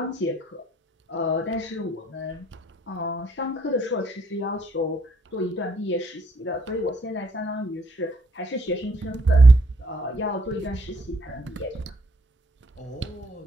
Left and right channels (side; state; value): both; normal; correlation 0.68